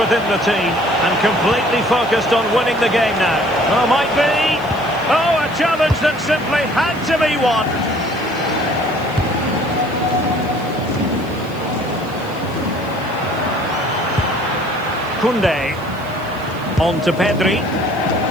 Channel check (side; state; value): right; noise; hiss, 23 dB below the sound